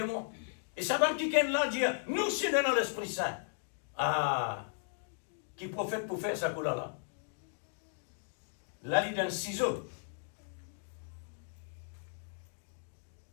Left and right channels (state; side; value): silent; right; digital silence